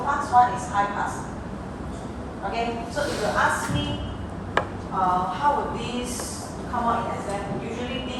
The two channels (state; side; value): identical; both; correlation 1.00